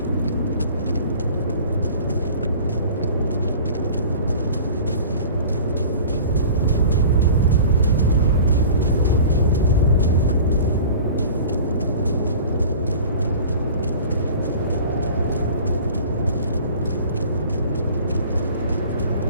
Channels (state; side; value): inverted; both; correlation -0.43